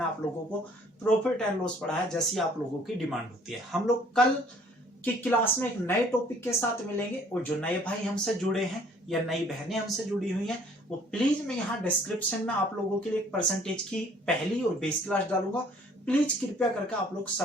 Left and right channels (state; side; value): normal; both; correlation 0.57